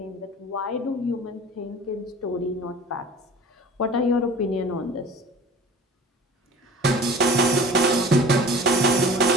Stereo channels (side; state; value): both; normal; correlation 0.42